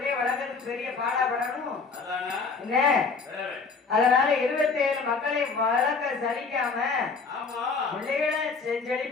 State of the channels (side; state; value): right; quieter; 4.8 dB